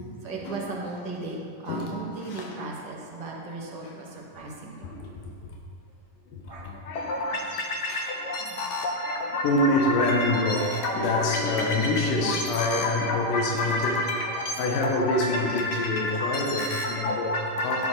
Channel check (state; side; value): late; right; 10 ms